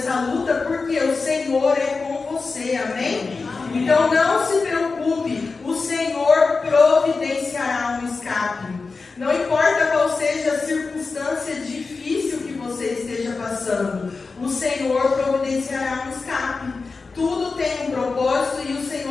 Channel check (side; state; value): right; quieter; 4.2 dB